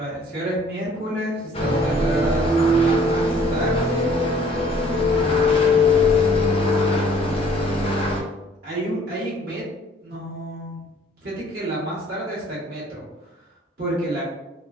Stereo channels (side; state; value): both; normal; correlation 0.56